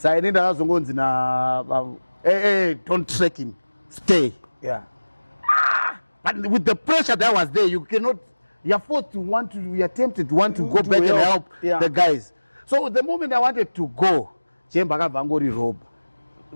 I need don't track him. Stay. Yeah. But with the pressure that was there, you're tempted to want to go back and help the guys. So the moment I wanted to go, Jemba Vangori robe.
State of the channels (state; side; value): inverted; both; correlation -1.00